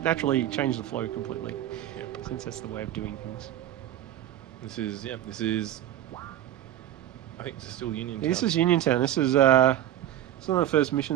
naturally changed the flow completely. Since that's the way of doing things. This is. I think this is still Uniontown. This is Uniontown. This is one of the first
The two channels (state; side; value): quieter; left; 12.6 dB